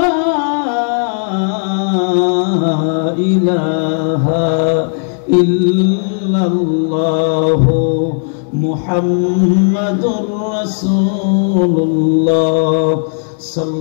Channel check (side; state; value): right; silent; digital silence